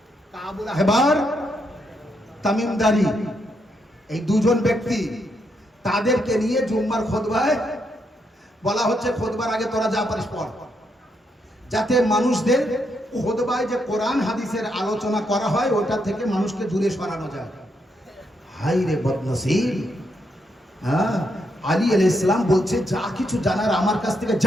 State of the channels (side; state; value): both; normal; correlation 0.78